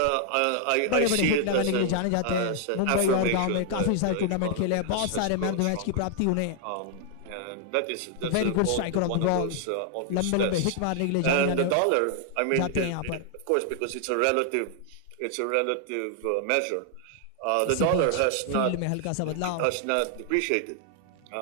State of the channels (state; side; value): different; both; correlation 0.00